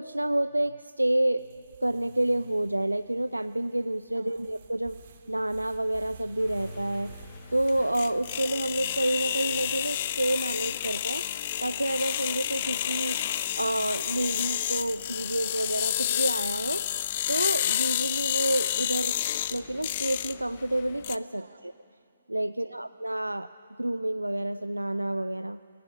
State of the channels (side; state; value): both; inverted; correlation -0.83